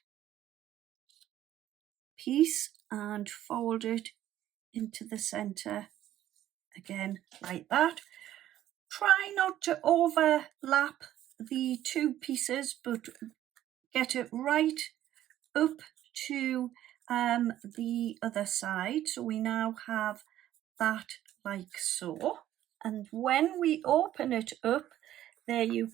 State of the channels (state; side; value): quieter; left; 12.7 dB